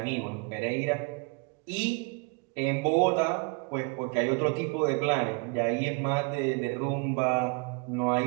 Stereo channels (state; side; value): quieter; left; 31.9 dB